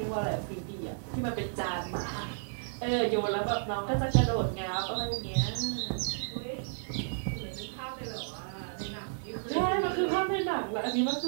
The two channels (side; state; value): left; silent; digital silence